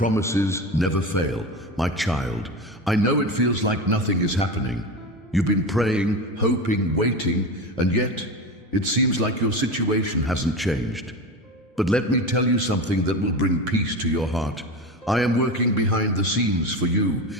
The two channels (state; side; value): normal; both; correlation 0.24